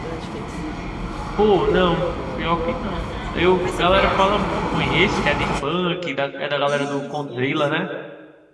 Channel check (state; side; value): identical; both; correlation 1.00